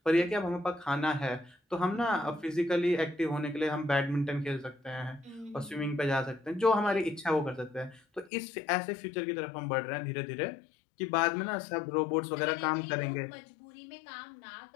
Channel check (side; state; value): right; drops out; at 8.3 s